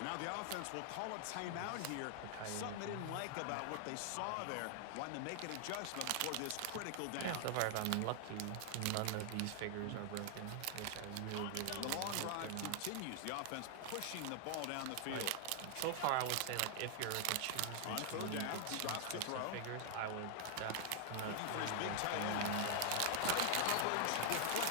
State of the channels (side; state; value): both; different; correlation 0.00